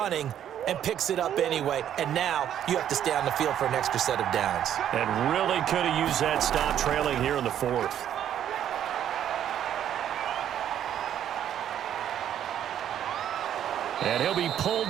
and picks it up anyway, and now you have to stay on the field for an extra set of downs. And really could have used that stop trailing here in the 4th. And he'll be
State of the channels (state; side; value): quieter; left; 10.3 dB